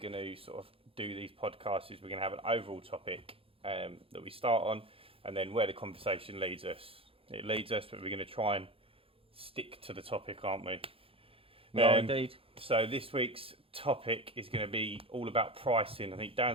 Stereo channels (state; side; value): late; left; 0.27 ms